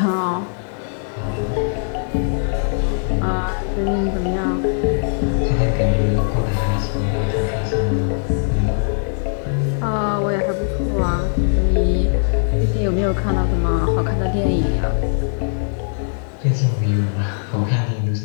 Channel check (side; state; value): right; silent; digital silence